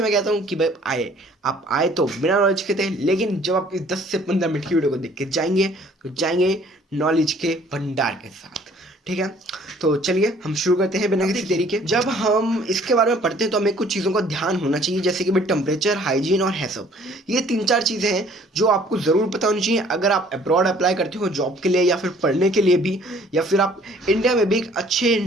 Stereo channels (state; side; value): normal; both; correlation 0.57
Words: मैं कहता हूँ कि भाई आप आए तो बिना नॉलेज के थे, लेकिन जब आप इस 10 से 15 मिनट की वीडियो को देख के जाएंगे तो जाएंगे नॉलेज के भंडार के साथ। ठीक है, तो चलिए हम शुरू करते हैं बिना किसी देरी के। जब हम इसके बारे में पढ़ते हैं तो हमें कुछ चीज़ों का ध्यान होना चाहिए, जैसे कि भाई टेम्परेचर, हाइजीन और हैसअप। ये 3-4 चीज़ें हैं जो आपको ज़रूर पता होनी चाहिए अगर आप अब्रॉड अप्लाई करते हो जॉब के लिए या फिर पढ़ने के लिए भी, या फिर आप इंडिया में भी एक अच्छे